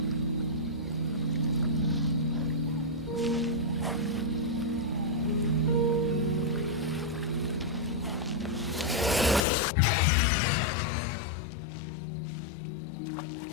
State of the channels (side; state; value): right; drops out; at 9.5 s